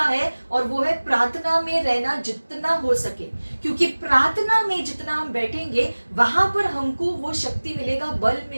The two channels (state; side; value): inverted; both; correlation -1.00